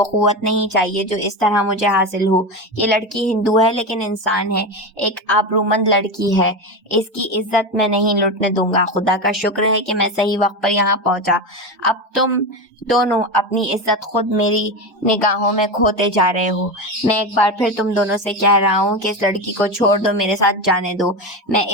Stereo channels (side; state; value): both; normal; correlation 0.19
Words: قوت نہیں چاہیے جو اس طرح مجھے حاصل ہو. یہ لڑکی ہندو ہے لیکن انسان ہے, ایک آبرومند لڑکی ہے. اس کی عزت میں نہیں لوٹنے دوں گا. خدا کا شکر ہے کہ میں صحیح وقت پر یہاں پہنچا. اب تم دونوں اپنی عزت خود میری نگاہوں میں کھوتے جا رہے ہو. میں ایک بار پھر تم دونوں سے کہہ رہا ہوں کہ اس لڑکی کو چھوڑ دو, میرے ساتھ جانے دو. میں